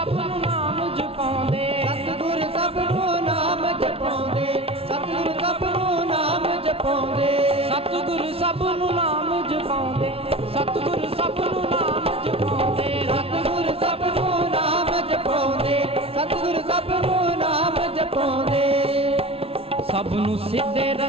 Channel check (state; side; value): late; left; 0.28 ms